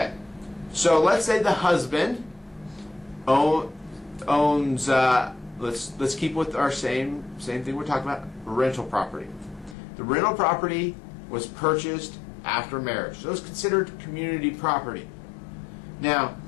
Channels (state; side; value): drops out; right; at 9.8 s